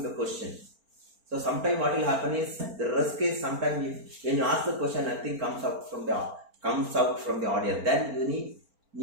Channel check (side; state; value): left; late; 4.4 ms